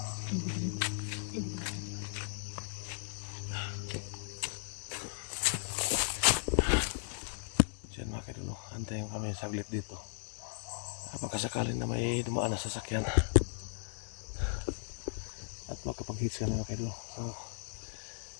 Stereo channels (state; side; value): silent; right; 54 dB below the other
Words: Diyan mga kaidolo, antayin kami saglit dito. Pagkasakaling na may dumaan na sasakyan at makapag-hits ka na mga kaidolo. So,